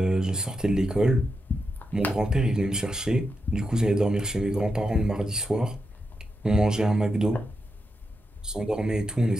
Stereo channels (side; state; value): both; normal; correlation 0.86